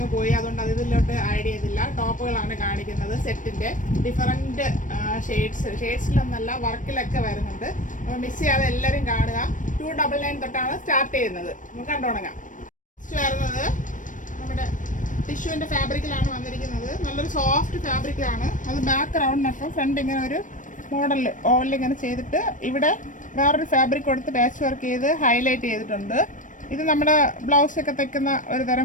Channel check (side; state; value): right; late; 0.37 ms